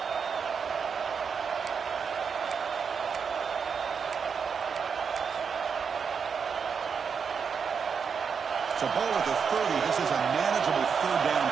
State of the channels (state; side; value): quieter; left; 6.2 dB